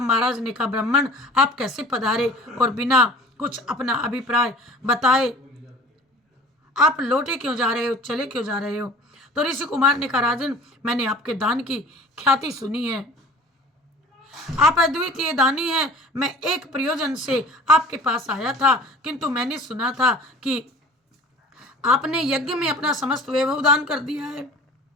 महाराज ने कहा, ब्राह्मण आप कैसे पधारे और बिना कुछ अपना अभिप्राय बताए आप लौटे क्यों जा रहे हो, चले क्यों जा रहे हो? तो ऋषि कुमार ने कहा, राजन मैंने आपके दान की ख्याति सुनी है, आप अद्वितीय दानी हैं। मैं एक प्रयोजन से आपके पास आया था, किंतु मैंने सुना था कि आपने यज्ञ में अपना समस्त वैभव दान कर दिया है।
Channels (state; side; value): normal; both; correlation 0.45